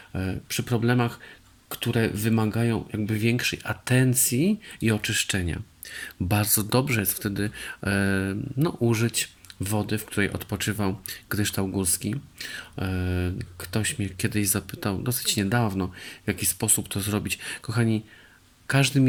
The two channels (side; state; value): both; identical; correlation 1.00